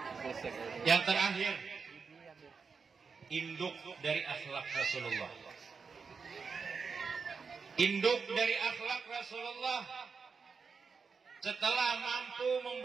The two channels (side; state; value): left; quieter; 5.3 dB